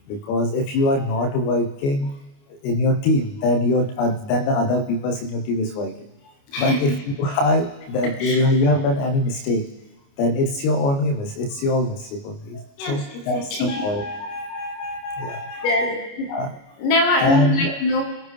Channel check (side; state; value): right; late; 29 ms